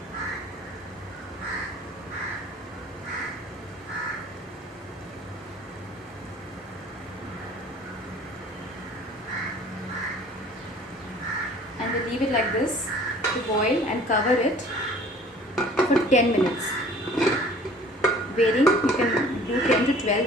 And we'll leave it like this to boil and cover it for 10 minutes. Varying, you can do 10 to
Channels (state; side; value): normal; both; correlation 0.50